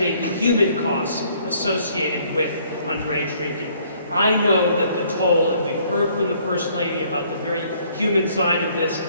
the human costs associated with underage drinking. I know that the toll, and we've heard from the First Lady about the very human side of this,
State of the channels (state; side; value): inverted; both; correlation -0.63